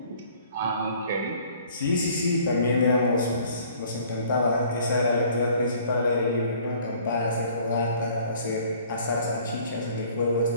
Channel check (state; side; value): inverted; both; correlation -0.55